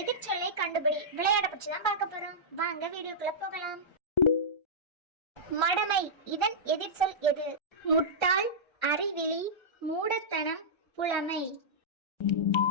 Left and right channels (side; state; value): right; late; 1.3 ms